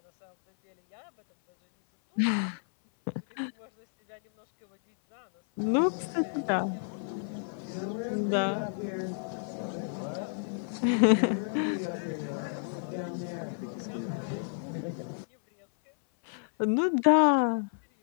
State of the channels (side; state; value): right; silent; 57 dB below the other